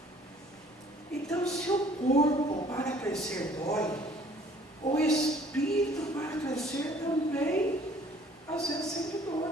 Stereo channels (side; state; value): both; normal; correlation 0.56